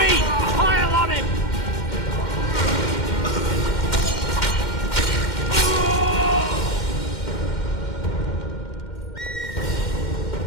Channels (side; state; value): right; late; 2.1 ms